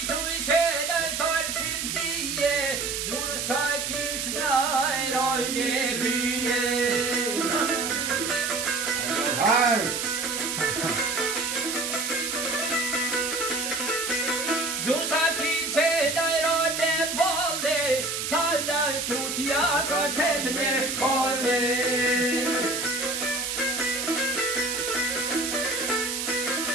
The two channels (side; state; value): right; noise; hiss, 2 dB below the sound